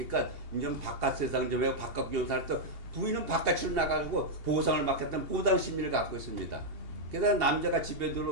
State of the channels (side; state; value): left; late; 2.8 ms